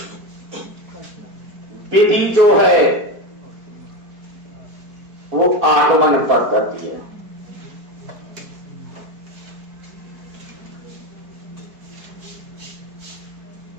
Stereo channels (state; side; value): late; left; 4.6 ms